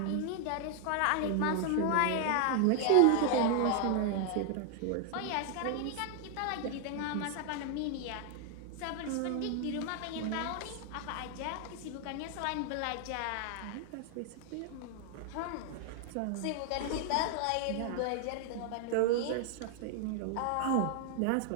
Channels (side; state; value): both; different; correlation 0.00